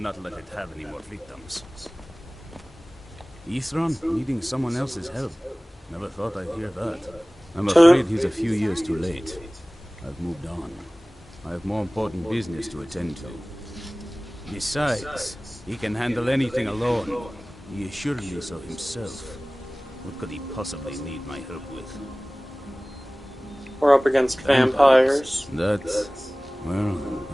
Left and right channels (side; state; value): both; normal; correlation 0.98